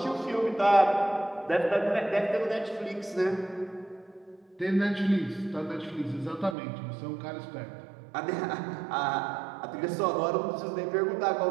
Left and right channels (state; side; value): drops out; left; at 6.6 s